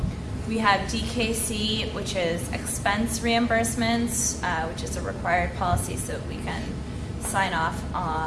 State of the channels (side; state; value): both; identical; correlation 1.00